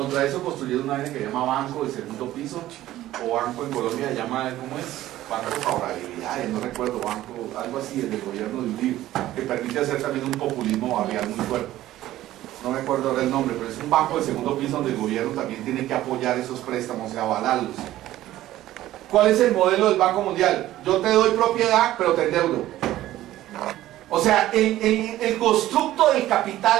eso construyeron una vaina que se llama Banco de Segundo Piso, o Banco en Colombia se llama, ¿cómo es? Banco de Favorabilidades, no recuerdo, banco, algo así, del gobierno de Uribe, que permite hacer también un populismo barrial muy fuerte. No me acuerdo ahora el nombre, pero es un banco de segundo piso donde el gobierno también tiene que apoyar esos préstamos y avalarlos. ¿Cuál es el modelo del Banco Mundial? Yo te doy propiedad, pero te endeudo. O sea, el constructo del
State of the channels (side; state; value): left; quieter; 14.6 dB